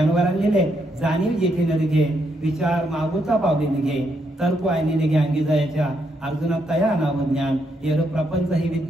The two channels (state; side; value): normal; both; correlation 0.77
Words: लिहिले, जाणीव जेथे न निघे, विचार मागोचा पावले निघे, तर्क आयने निघे अंगी जायच्या, अर्जुना तया नाव ज्ञान, येर प्रपंच हे